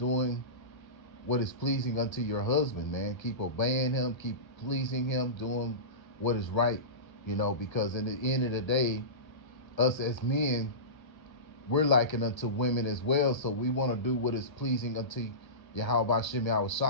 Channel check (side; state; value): right; late; 1.3 ms